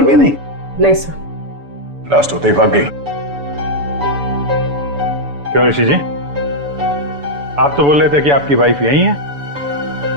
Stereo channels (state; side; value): late; left; 7.0 ms